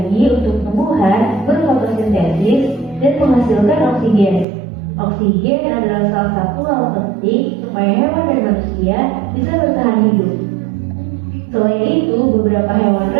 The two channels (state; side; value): drops out; left; at 4.5 s